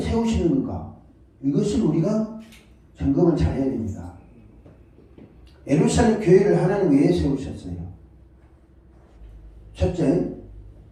세우시는가? 이것을 우리가 점검을 잘 해야 됩니다. 예루살렘 교회를 하나님 왜 세우셨어요? 첫째,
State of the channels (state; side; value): identical; both; correlation 1.00